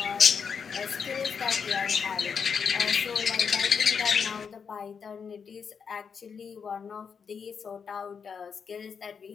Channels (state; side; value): quieter; right; 6.4 dB